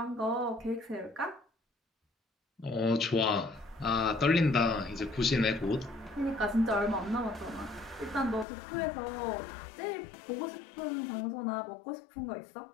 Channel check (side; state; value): right; drops out; at 8.5 s